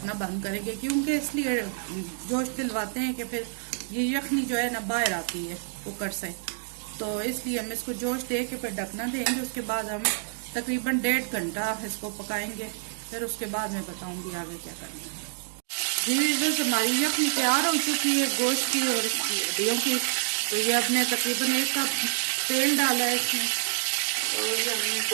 बंद करेंगे, क्योंकि इसलिए जोश दिलवाते हैं कि फिर ये यखनी जो है ना बाहर आती है कुकर से, तो इसलिए हम इसको जोश दे के फिर ढकना देंगे। उसके बाद हम तकरीबन 1.5 घंटा इसको पकाएंगे, फिर उसके बाद मैं बताऊंगी आगे क्या करना है। जी बस हमारी यखनी तैयार हो चुकी है गोश्त की और हड्डियों की। तो ये अपने तकरीबन 1 कप तेल डाला है इसमें, और ये हमने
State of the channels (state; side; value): silent; left; digital silence